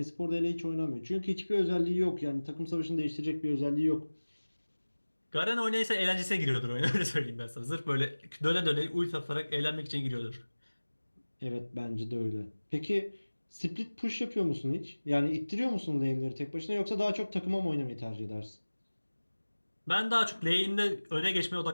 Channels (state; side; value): inverted; both; correlation -1.00